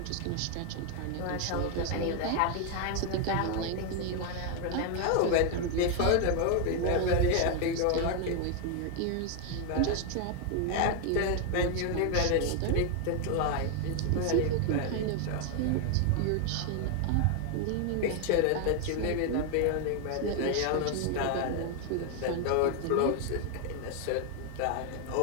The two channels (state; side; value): different; both; correlation 0.00